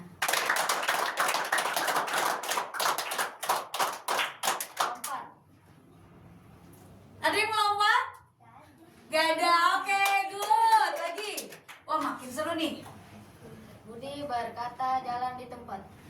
Lompat. Ada yang melompat? Gak ada. Oke, good. Lagi. Wah, makin seru nih. Budi berkata, jalan di tempat.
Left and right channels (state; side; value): identical; both; correlation 1.00